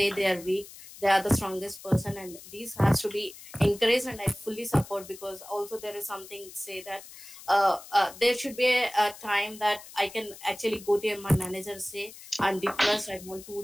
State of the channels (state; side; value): noise; left; hiss, 17 dB below the sound